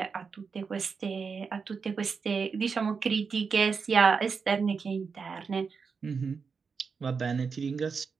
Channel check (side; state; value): left; quieter; 5.4 dB